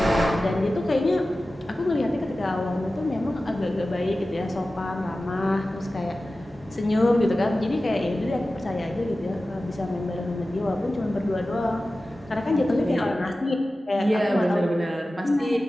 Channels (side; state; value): both; normal; correlation 0.95